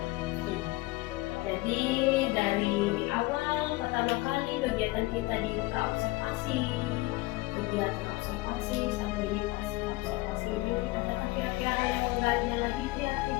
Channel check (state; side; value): quieter; right; 21.4 dB